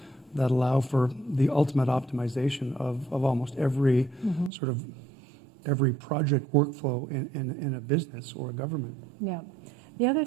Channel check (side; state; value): left; drops out; at 4.5 s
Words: that allow for the ultimate optimization of almost every sort of every project workflow in a business or a government. Yeah. The other